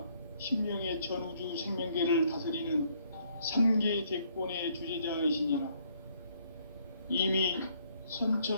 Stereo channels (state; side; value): inverted; both; correlation -0.67